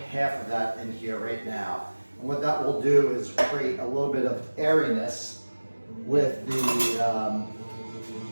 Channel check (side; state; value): both; inverted; correlation -1.00